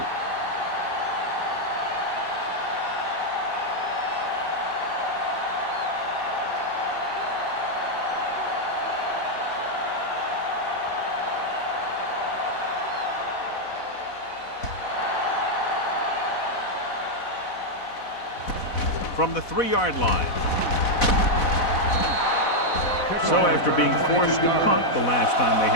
From the 3-yard line. So after being forced to punt the last time they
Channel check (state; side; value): late; right; 4.1 ms